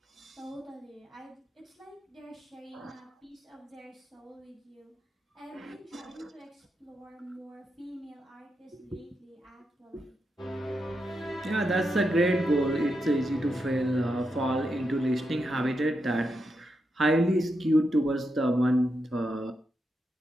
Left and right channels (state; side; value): normal; both; correlation 0.85